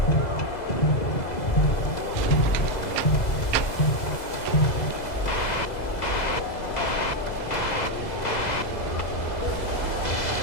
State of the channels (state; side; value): late; right; 2.0 ms